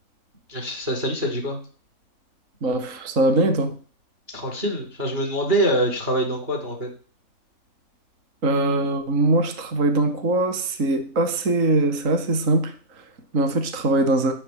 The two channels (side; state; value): left; late; 3.8 ms